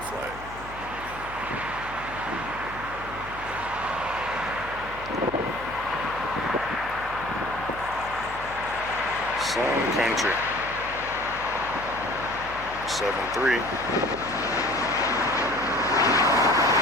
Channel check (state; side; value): noise; left; hum, 15 dB below the sound